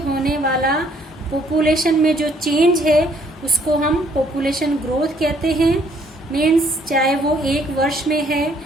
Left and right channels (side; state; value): both; normal; correlation 0.64